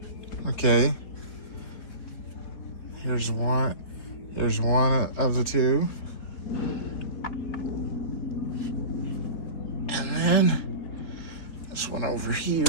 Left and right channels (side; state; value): right; late; 4.1 ms